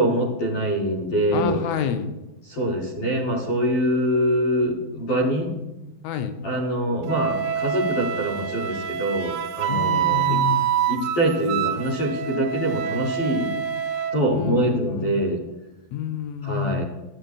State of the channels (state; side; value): late; right; 12 ms